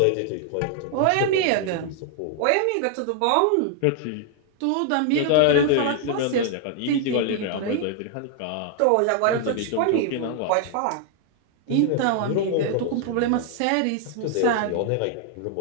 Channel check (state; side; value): different; both; correlation 0.00